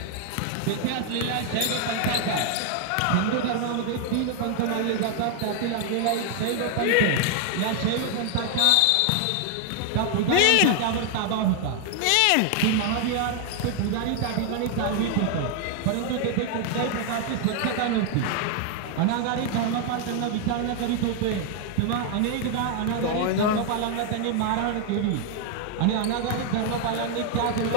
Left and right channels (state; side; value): different; both; correlation 0.00